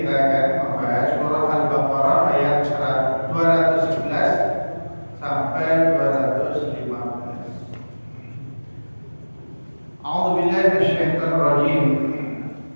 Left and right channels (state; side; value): inverted; both; correlation -1.00